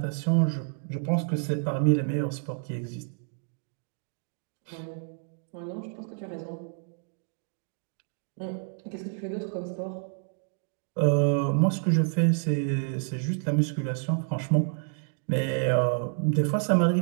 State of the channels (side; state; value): left; silent; 59 dB below the other